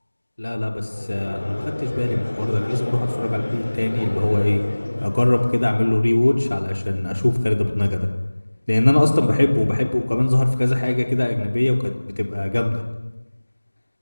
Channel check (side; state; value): both; inverted; correlation -1.00